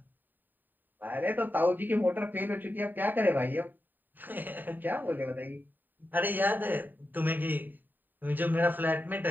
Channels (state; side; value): late; left; 0.090 ms